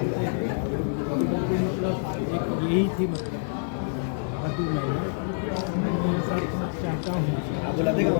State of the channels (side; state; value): right; silent; digital silence